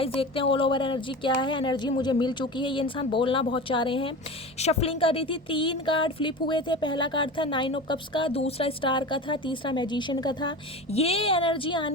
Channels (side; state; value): both; normal; correlation 0.30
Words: देखते हैं ऑल ओवर एनर्जी क्या है। एनर्जी मुझे मिल चुकी है। ये इंसान बोलना बहुत चाह रहे हैं। शफलिंग कर रही थी, 3 कार्ड फ्लिप हुए थे। पहला कार्ड था 9 ऑफ कप्स का, दूसरा स्टार का था, तीसरा मैजिशियन का था। ये एनर्जी